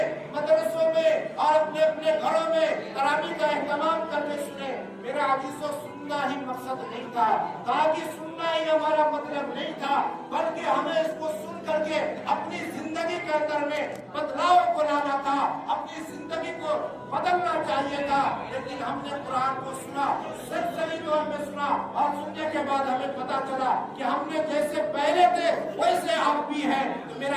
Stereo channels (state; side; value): identical; both; correlation 1.00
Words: مدرسوں میں اور اپنے اپنے گھروں میں، تراویح کا اہتمام کرنے سنے. میرے عزیزوں سننا ہی مقصد نہیں تھا، تاکہ سننا ہی ہمارا مطلب نہیں تھا، بلکہ ہمیں اس کو سن کر کے اپنی زندگی کے اندر میں بدلاؤ کو لانا تھا، اپنی زندگی کو بدلنا چاہیے تھا. لیکن ہم نے قرآن کو سنا، سچی طور میں سنا، اور سننے کے بعد ہمیں پتا چلا کہ ہم نے جیسے پہلے تھے ویسے آپ بھی ہیں. تو میرے